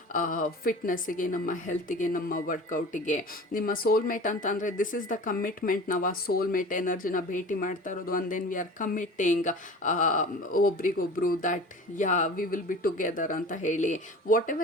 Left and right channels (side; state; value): both; normal; correlation 0.39